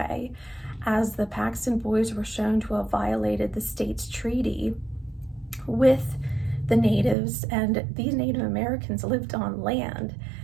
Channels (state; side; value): drops out; left; at 7.2 s